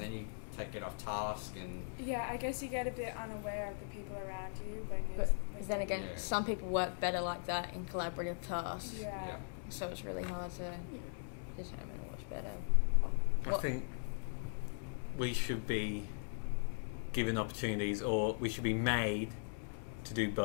then you get off task and Yeah, I guess you get a bit unaware of the people around you when But when then again, Yeah. some people work better like that in collaborative tasks. yeah. So it's really hard to determine what's better. I What- think we should be given opportunities, or we should be made to do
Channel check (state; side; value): silent; right; digital silence